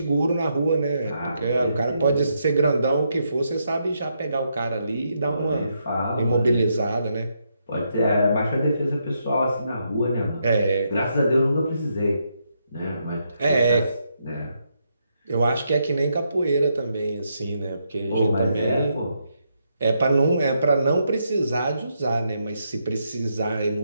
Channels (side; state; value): both; inverted; correlation -0.79